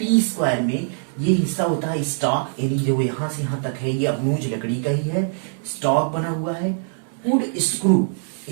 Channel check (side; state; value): left; silent; 64 dB below the other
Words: स्क्वायर में ये हिस्सा होता है स्टॉक, यानी जो यहां से यहां तक है ये अबनूज लकड़ी का ही है, स्टॉक बना हुआ है। वुड स्क्रू,